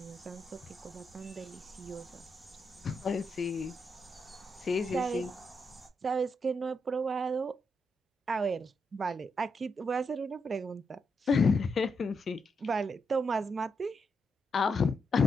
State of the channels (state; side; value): normal; both; correlation 0.82